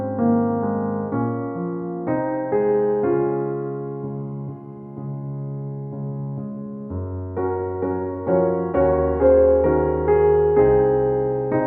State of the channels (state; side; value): identical; both; correlation 1.00